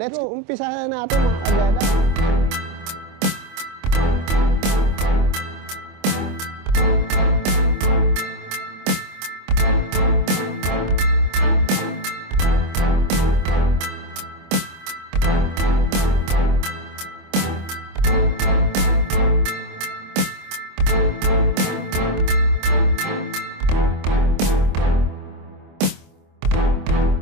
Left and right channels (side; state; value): left; late; 25 ms